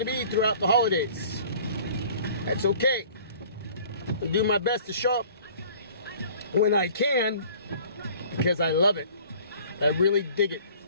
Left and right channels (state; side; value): inverted; both; correlation -0.50